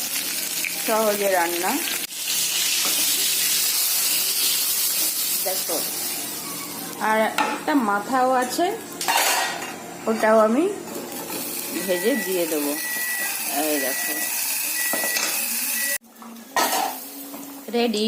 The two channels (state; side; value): identical; both; correlation 1.00